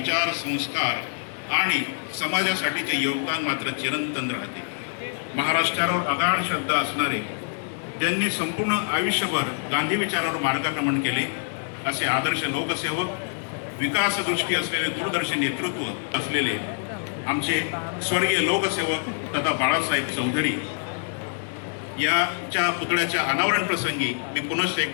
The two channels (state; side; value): silent; right; digital silence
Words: संस्कार आणि समाजासाठीचे योगदान मात्र चिरंतन राहते. महाराष्ट्रावर अगाध श्रद्धा असणारे, ज्यांनी संपूर्ण आयुष्यभर गांधी विचारावर मार्गक्रमण केले, असे आदर्श लोकसेवक, विकासदृष्टी असलेले दूरदर्शी नेतृत्व असलेले आमचे स्वर्गीय लोकसेवक तथा बाळासाहेब चौधरी याच्या पुतळ्याच्या अनावरण प्रसंगी मी पुनश्च